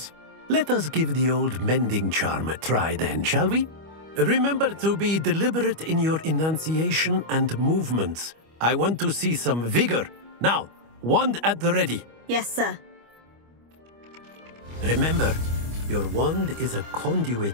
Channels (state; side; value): late; left; 25 ms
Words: Let us give the old mending charm a try then, shall we? Remember to be deliberate in your enunciation and movements. I want to see some vigor. Now, wand at the ready. Yes, sir. Remember, your wand is a